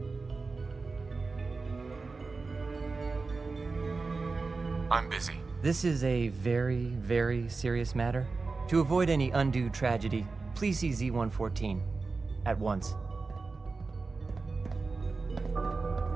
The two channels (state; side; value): quieter; left; 4.0 dB